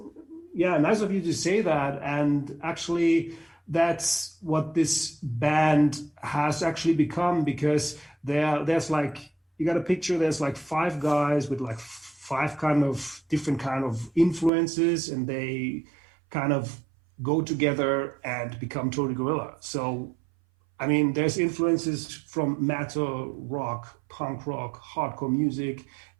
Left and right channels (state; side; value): drops out; left; at 14.5 s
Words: nice of you to say that. And actually, that's what this band has actually become, because there's like, you got a picture. There's like 5 guys with like 5 kind of different kind of influences, and they kind of go together and become Tony Gorilla. So, I mean, there's influences from metal, rock, punk rock, hardcore music,